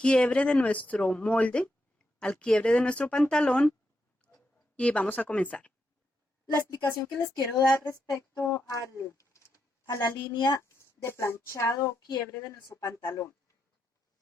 de nuestro molde, al quiebre de nuestro pantalón, y vamos a comenzar. La explicación que les quiero dar respecto a la línea de planchado o quiebre de nuestro pantalón.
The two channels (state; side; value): normal; both; correlation 0.83